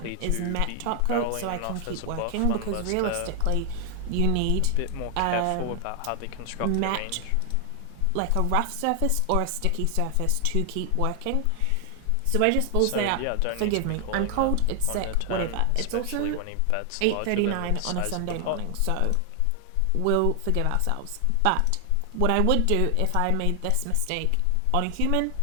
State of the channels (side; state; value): both; different; correlation 0.00